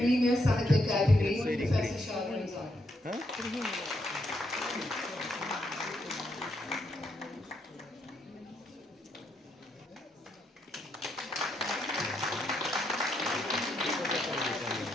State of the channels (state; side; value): normal; both; correlation 0.78